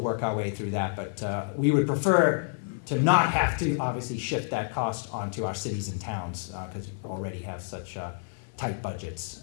our way through that, but we would prefer to not have to obviously shift that cost onto our cities and towns because we already have such tight budgets.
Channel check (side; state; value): right; silent; 59 dB below the other